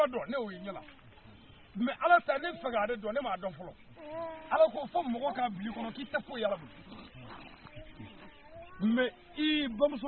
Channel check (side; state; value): both; identical; correlation 1.00